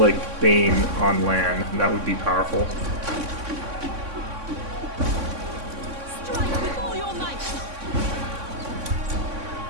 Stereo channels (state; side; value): late; left; 3.6 ms